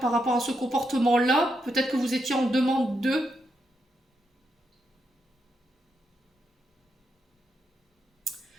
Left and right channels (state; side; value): normal; both; correlation 0.82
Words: par rapport à ce comportement-là. Peut-être que vous étiez en demande d'eux.